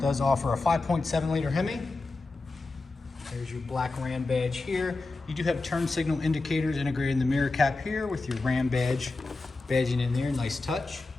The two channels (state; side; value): quieter; right; 3.4 dB